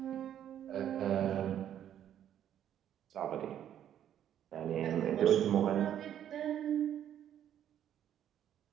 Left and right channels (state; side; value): quieter; left; 10.3 dB